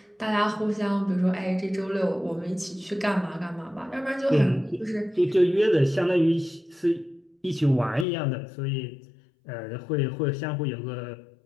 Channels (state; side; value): drops out; right; at 8.1 s